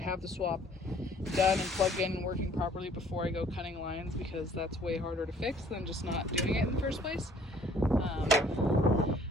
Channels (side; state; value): both; normal; correlation 0.57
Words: the swap done and plugged in and working properly before I go cutting lines, because that's way harder to fix than just not doing it in the first place.